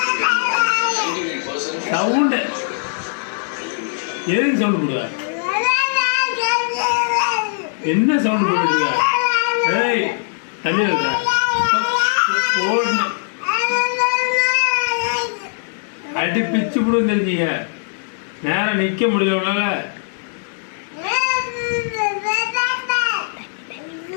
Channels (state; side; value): silent; right; digital silence